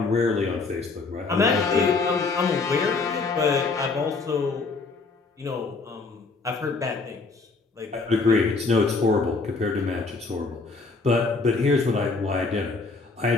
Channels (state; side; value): quieter; right; 4.1 dB